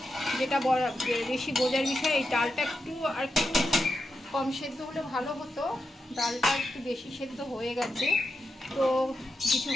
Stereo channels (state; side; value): normal; both; correlation 0.87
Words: যেটা বেশি বোঝার বিষয়, এই ডালটা একটু আর একটু কম সেদ্ধ হলে ভালো হতো। ডালটা একটু বেশি সেদ্ধ হয়ে গেছে, তো কিছু